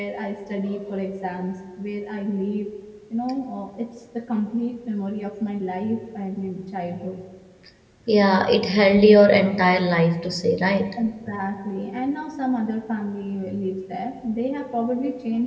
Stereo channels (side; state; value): both; identical; correlation 1.00